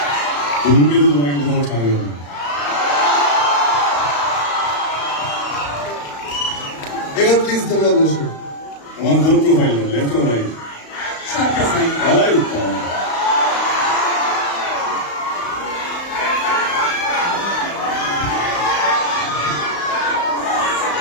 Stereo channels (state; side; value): late; right; 35 ms